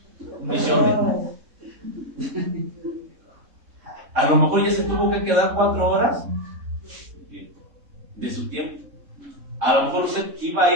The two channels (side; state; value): left; late; 3.6 ms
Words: Un michote. A lo mejor ya se tuvo que quedar 4 horas de su tiempo. A lo mejor usted iba a